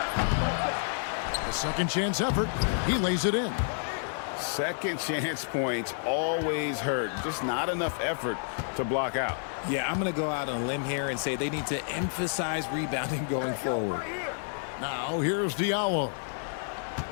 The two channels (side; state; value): right; silent; digital silence